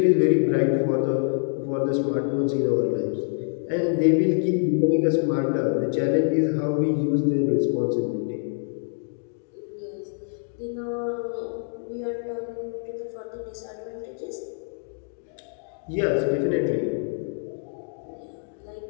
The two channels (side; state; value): right; silent; 61 dB below the other